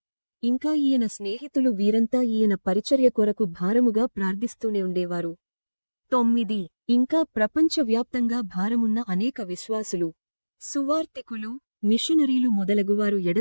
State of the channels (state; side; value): inverted; both; correlation -1.00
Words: ఇంకా ఈయన స్నేహితులు వీరంతా ఈయన పరిచర్య కొరకు భారముగా ప్రార్థిస్తూనే ఉండేవారు. 9. ఇంకా ప్రపంచవ్యాప్తంగా భారమున్న అనేక విశ్వాసులు, సువార్తికులు, మిషనరీలు మొదలగువారు